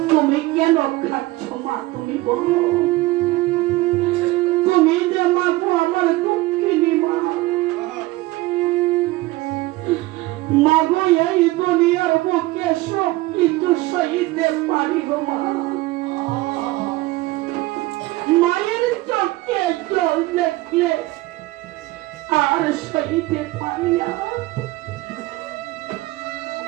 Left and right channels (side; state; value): left; quieter; 19.4 dB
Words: তুমি কেন খাচ্ছ মা তুমি বলো তুমি যে মা গো আমার দুঃখিনী মা মা গো এই দুনিয়ার বুকে সব কিছু সইতে পারি গো মা মায়ের চোখে জল দেখলে আর সইতে পারি না